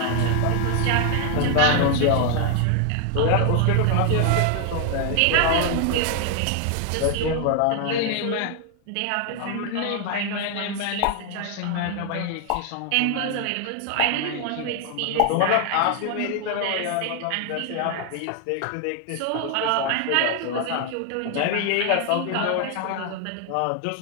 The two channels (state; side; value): different; both; correlation 0.00